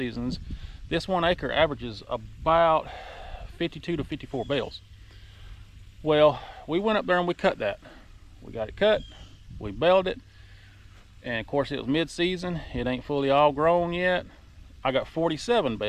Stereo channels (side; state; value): both; identical; correlation 1.00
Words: this 1 acre averages about 52 to 54 bales. Well, we went up there and we cut that. We got it cut, we baled it, and of course it was mid-season. It ain't fully all grown yet. I got 47